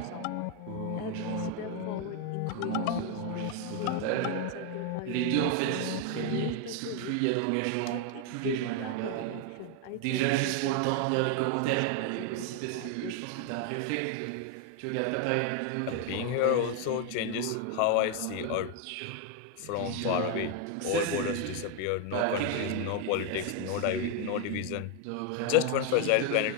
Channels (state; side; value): different; both; correlation 0.01